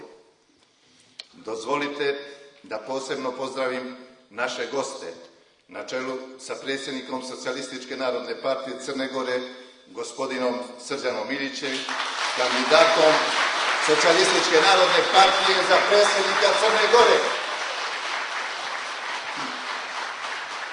Dozvolite da posebno pozdravim naše goste na čelu sa predsjednikom Socijalističke narodne partije Crne Gore, gospodinom Srđanom Milićem, kandidatom Socijalističke narodne partije za predsjednika Crne Gore.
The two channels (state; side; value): identical; both; correlation 1.00